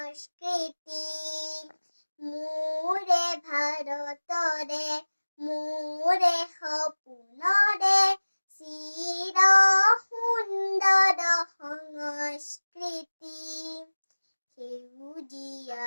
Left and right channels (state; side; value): inverted; both; correlation -1.00